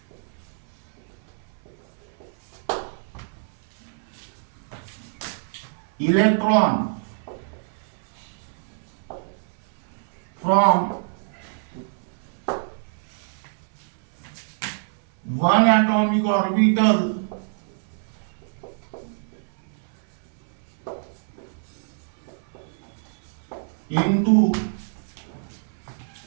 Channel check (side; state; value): left; silent; 61 dB below the other